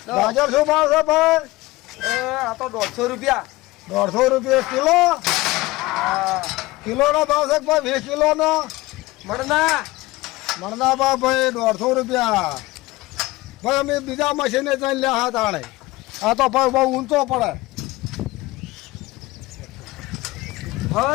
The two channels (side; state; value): right; quieter; 19.9 dB